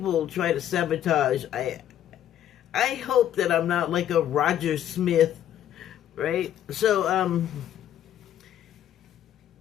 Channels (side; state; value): right; quieter; 11.1 dB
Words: try to sabotage. I hope that I'm not like a Roger Smith, right? So,